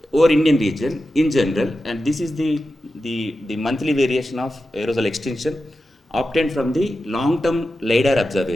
Over Indian region in general, and this is the monthly variation of aerosol extinction obtained from the long-term LiDAR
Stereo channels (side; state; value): both; normal; correlation 0.92